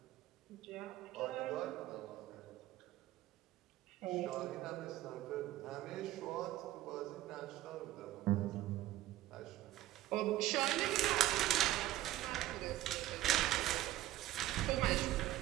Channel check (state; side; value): quieter; left; 14.8 dB